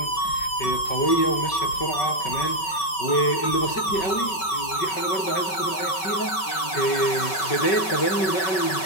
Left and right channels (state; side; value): late; right; 5.3 ms